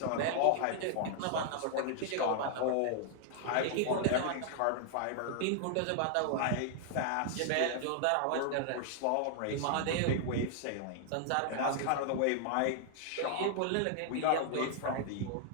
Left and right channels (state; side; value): different; both; correlation 0.00